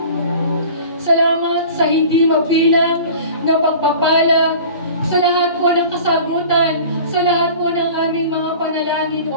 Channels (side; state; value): both; inverted; correlation -0.42